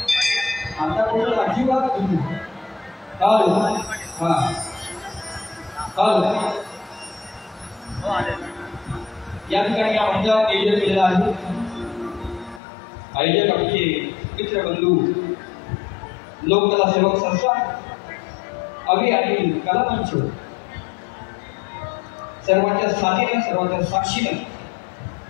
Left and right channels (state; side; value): drops out; right; at 12.6 s